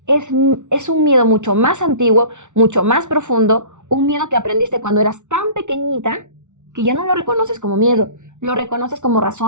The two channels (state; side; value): late; left; 0.85 ms